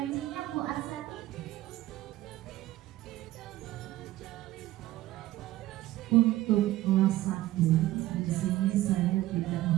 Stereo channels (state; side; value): quieter; left; 15.8 dB